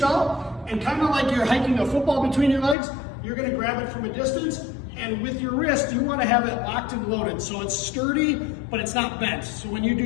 out and kind of like you're hiking a football between your legs, you're going to grab it from a distance, and with your wrist, you want to have it locked and loaded. So it's sturdy, but it's not bent. So when you do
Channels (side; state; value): right; drops out; at 2.8 s